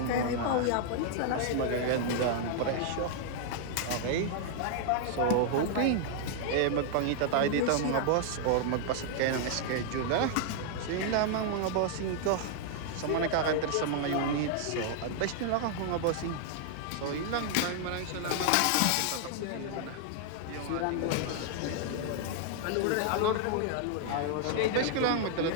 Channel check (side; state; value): both; different; correlation 0.00